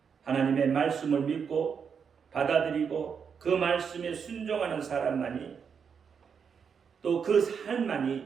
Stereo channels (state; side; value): quieter; left; 6.6 dB